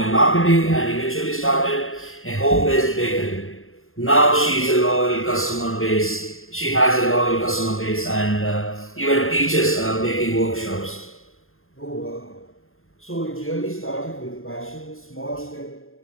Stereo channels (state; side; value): late; right; 0.61 ms